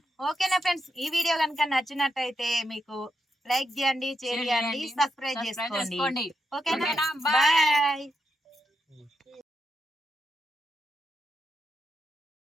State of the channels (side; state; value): both; normal; correlation 0.83